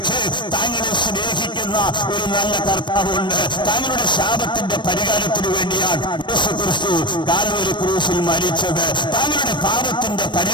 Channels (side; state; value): right; late; 0.22 ms